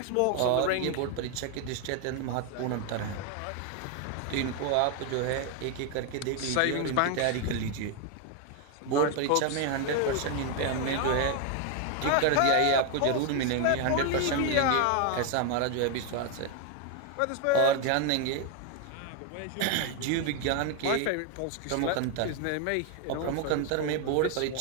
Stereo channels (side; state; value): both; different; correlation 0.01